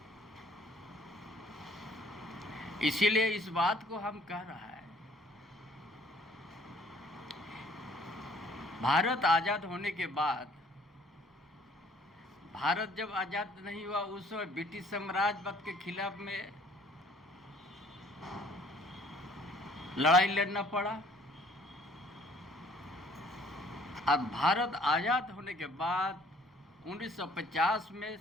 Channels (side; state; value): both; normal; correlation 0.57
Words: इसीलिए इस बात को हम कह रहा है, भारत आजाद होने के बाद, भारत जब आजाद नहीं हुआ उस समय ब्रिटिश साम्राज्यवाद के खिलाफ में लड़ाई लड़ना पड़ा। अब भारत आजाद होने के बाद 1950 में